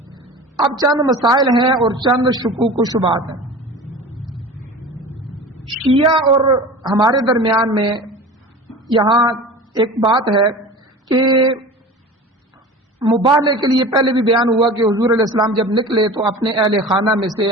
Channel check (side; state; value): both; normal; correlation 0.36